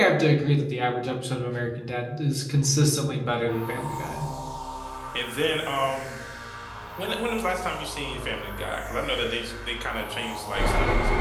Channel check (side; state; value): both; identical; correlation 1.00